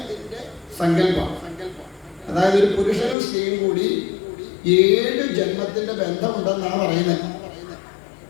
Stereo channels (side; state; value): right; drops out; at 3.2 s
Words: സങ്കല്പം. അതായത് ഒരു പുരുഷനും സ്ത്രീയും കൂടി 7 ജന്മത്തിന്റെ ബന്ധമുണ്ടെന്നാണ് പറയുന്നത്.